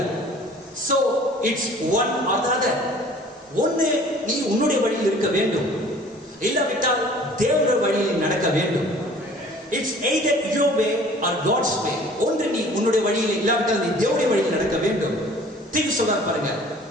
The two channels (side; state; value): both; normal; correlation 0.50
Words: So it's one or the other. ஒன்று நீ உன்னுடைய வழியில் இருக்க வேண்டும், இல்லாவிட்டால் தேவனுடைய வழியில் நடக்க வேண்டும். It's either your way or God's way. ஒன்று நீ உன்னுடைய வழியில், இல்லாவிட்டால் நீ தேவனுடைய வழியில் நடக்க வேண்டும். திருப்பி சொல்றாரு பாருங்க,